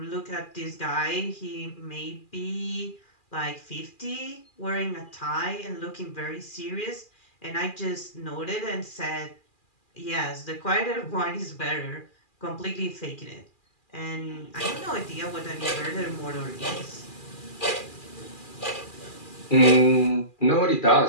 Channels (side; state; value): right; late; 2.4 ms